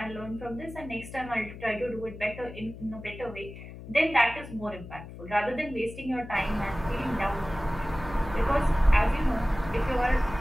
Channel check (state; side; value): noise; left; hum, 13 dB below the sound